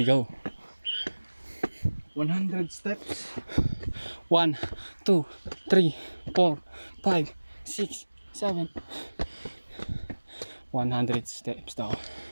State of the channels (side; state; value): both; inverted; correlation -1.00